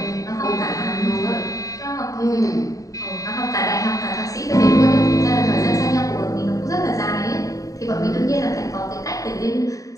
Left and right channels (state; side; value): late; right; 0.16 ms